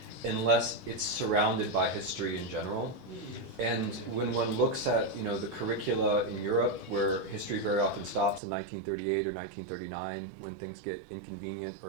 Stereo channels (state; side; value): drops out; left; at 8.4 s